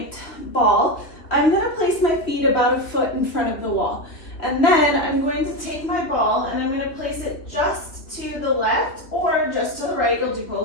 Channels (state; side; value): late; right; 3.2 ms